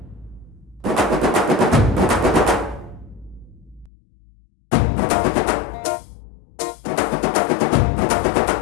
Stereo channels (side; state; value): right; drops out; at 3.9 s